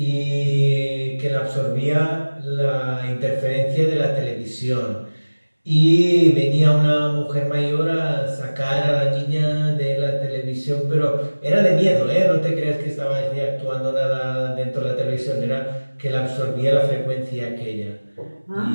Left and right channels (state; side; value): inverted; both; correlation -1.00